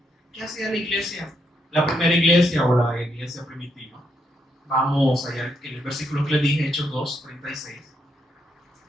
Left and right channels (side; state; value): both; normal; correlation 0.78